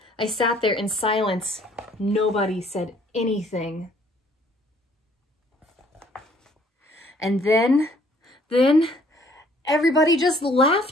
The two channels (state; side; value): normal; both; correlation 0.60